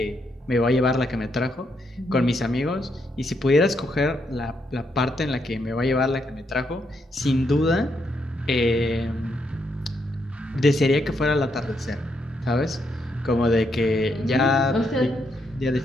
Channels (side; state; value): both; normal; correlation 0.78